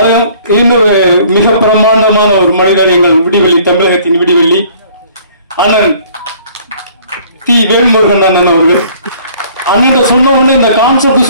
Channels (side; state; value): both; inverted; correlation -0.55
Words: இன்னொரு மிக பிரம்மாண்டமான ஒரு மனிதர், எங்கள் விடிவெளி, தமிழகத்தின் விடிவெளி அண்ணன் தி வேல்முருகன் அண்ணன் அவர்கள். அண்ணன் சொன்ன உடனே, இந்த